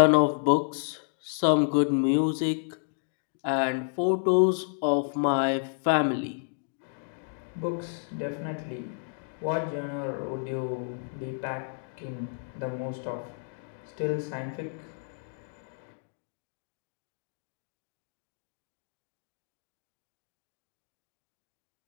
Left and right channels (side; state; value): right; silent; digital silence